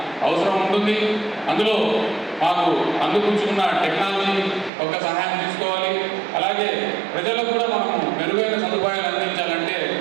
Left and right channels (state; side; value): drops out; left; at 4.7 s